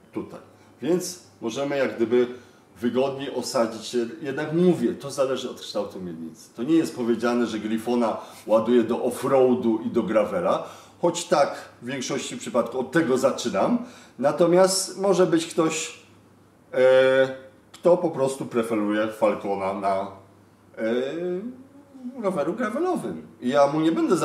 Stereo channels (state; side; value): identical; both; correlation 1.00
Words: tutaj. Więc możemy jak gdyby wygodniej osadzić się. Jednak mówię, to zależy od kształtu miednicy. To nie jest powiedziane, że Griffona ładuje do off-roadu i do gravela. Choć tak, w większości przypadków od tego zaczynam. Natomiast może być ktoś, kto po prostu preferuje Falcona na roweru gravelowym. I ja mu nie będę